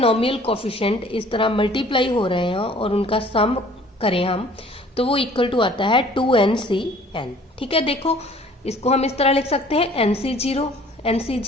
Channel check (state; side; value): normal; both; correlation 0.53